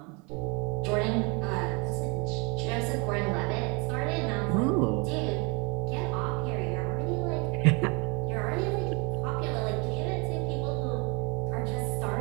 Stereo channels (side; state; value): left; quieter; 30.1 dB